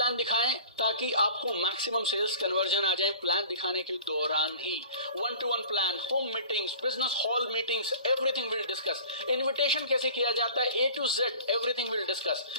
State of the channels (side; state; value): both; inverted; correlation -0.43